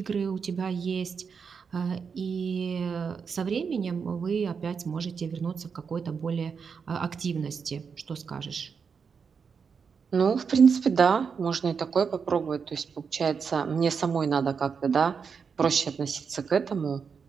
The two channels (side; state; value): left; quieter; 6.0 dB